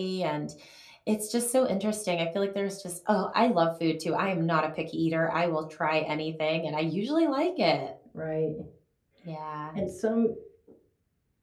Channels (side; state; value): both; identical; correlation 1.00